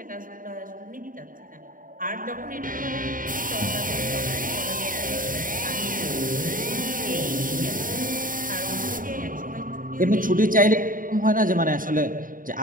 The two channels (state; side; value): late; left; 0.40 ms